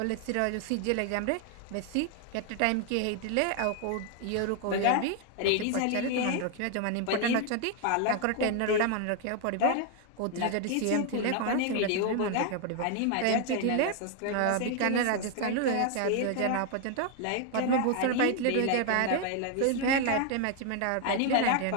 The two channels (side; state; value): both; different; correlation 0.01